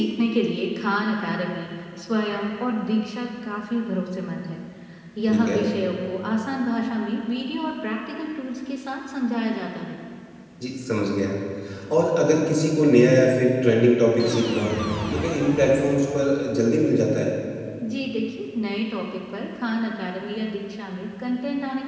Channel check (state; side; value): identical; both; correlation 1.00